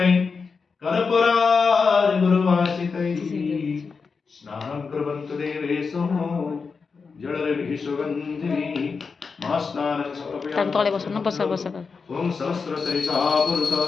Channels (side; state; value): right; quieter; 5.0 dB